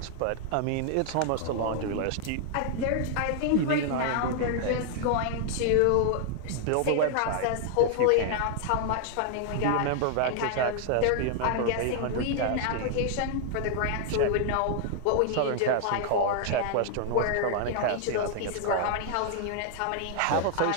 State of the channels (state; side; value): different; both; correlation 0.00